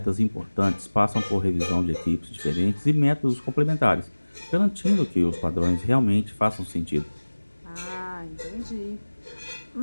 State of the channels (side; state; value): both; inverted; correlation -1.00